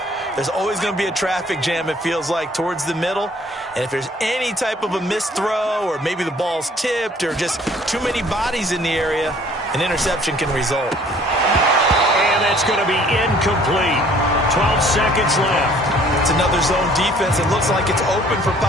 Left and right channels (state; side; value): normal; both; correlation 0.56